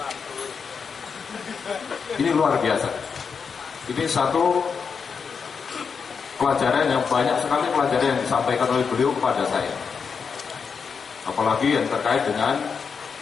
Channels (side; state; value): right; quieter; 5.9 dB